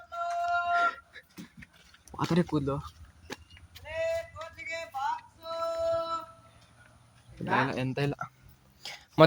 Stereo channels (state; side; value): identical; both; correlation 1.00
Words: ಪಾತ್ರೆ ಕೂದಲು ಎಂತ ಇಲ್ಲ.